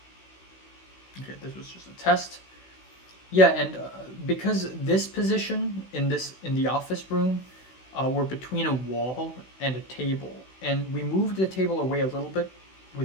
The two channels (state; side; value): late; right; 16 ms